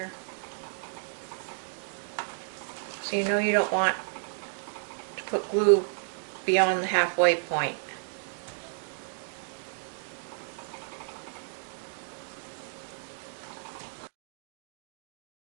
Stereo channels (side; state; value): left; silent; digital silence